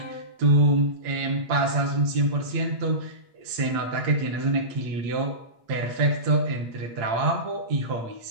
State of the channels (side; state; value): left; late; 8.7 ms